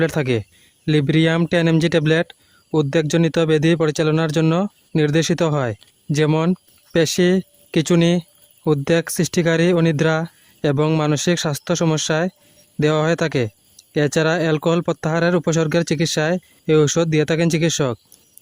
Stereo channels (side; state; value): both; identical; correlation 1.00